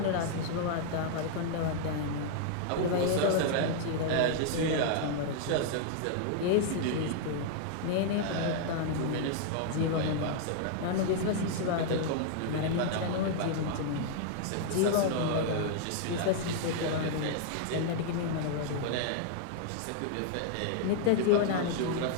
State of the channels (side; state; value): both; different; correlation -0.01